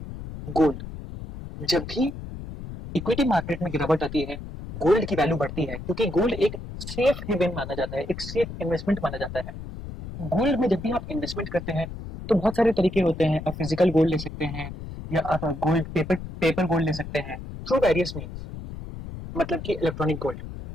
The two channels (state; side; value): noise; left; rumble, 10 dB below the sound